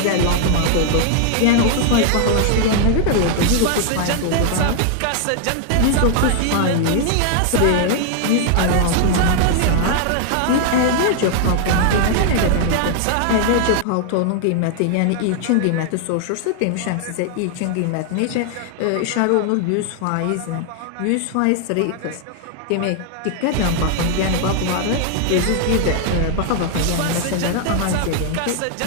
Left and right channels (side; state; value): both; different; correlation 0.00